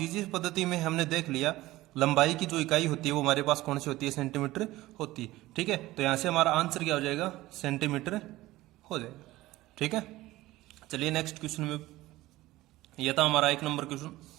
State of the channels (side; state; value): left; quieter; 17.5 dB